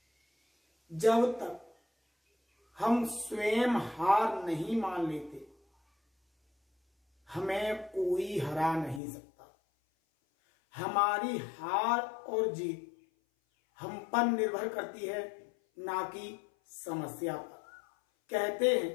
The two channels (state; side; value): drops out; right; at 9.0 s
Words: जब तक हम स्वयं हार नहीं मान लेते हमें कोई हरा नहीं सकता। हमारी हार और जीत हम पर निर्भर करती है, ना कि समस्या पर। कहते हैं